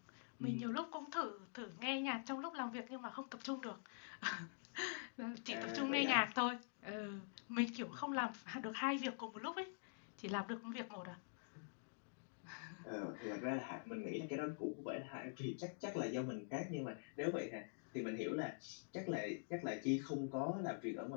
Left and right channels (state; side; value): silent; right; digital silence